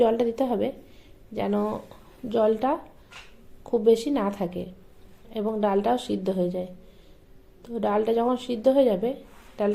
জলটা দিতে হবে যেন জলটা খুব বেশি না থাকে এবং ডালটাও সিদ্ধ হয়ে যায়। তো ডালটা যখন সিদ্ধ হয়ে যাবে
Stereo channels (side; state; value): both; identical; correlation 1.00